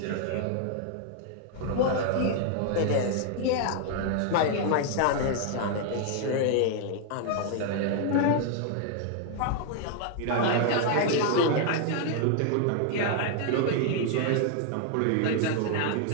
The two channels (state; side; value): different; both; correlation 0.00